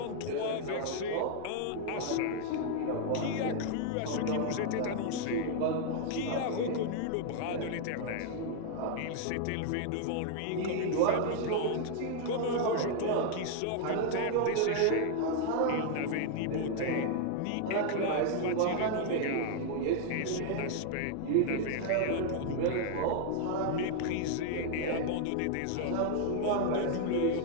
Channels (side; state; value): both; different; correlation 0.00